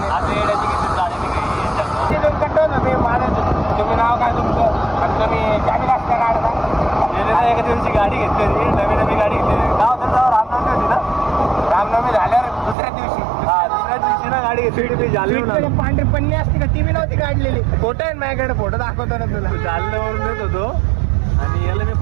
तुम्ही नाव काय तुमचं आणि तुम्ही गाडी वाजता काढता एका दिवशी गाडी घेतली नवी गाडी घेतली नाव त्याचं रामनवमी होती ना रामनवमी झाल्यावर दुसऱ्या दिवशी दुसऱ्या दिवशी ना गाडी घेतली मी जालन्यावरून पांढरी पन्नी असते का ती बी नव्हती काढलेली फोटो आहे माझ्याकडे फोटो दाखवतो ना तुला जालन्यावरून येत होतो आणि याला मी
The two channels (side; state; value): left; drops out; at 12.8 s